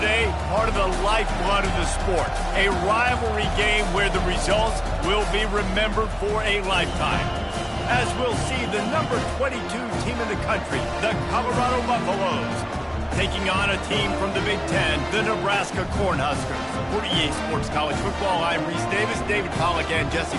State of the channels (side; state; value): both; identical; correlation 1.00